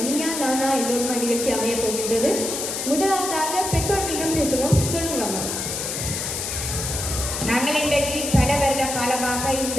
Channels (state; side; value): noise; left; hiss, 3 dB below the sound